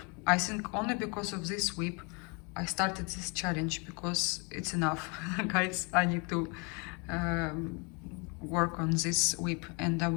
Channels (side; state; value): right; quieter; 32.1 dB